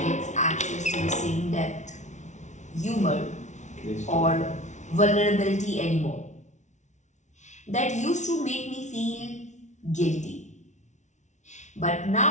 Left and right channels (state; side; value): late; right; 0.34 ms